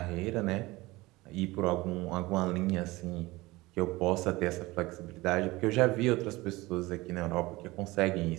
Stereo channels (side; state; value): left; quieter; 20.6 dB